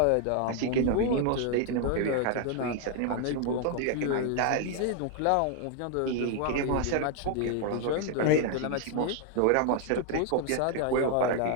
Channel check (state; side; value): different; both; correlation 0.00